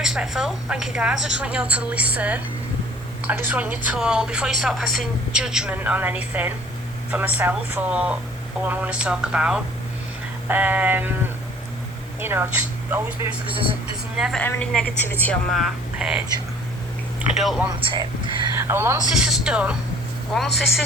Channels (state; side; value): normal; both; correlation 0.53